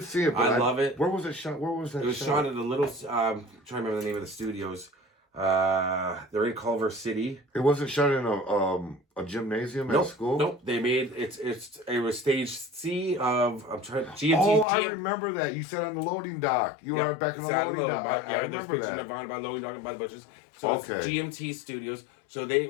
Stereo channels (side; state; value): right; drops out; at 14.7 s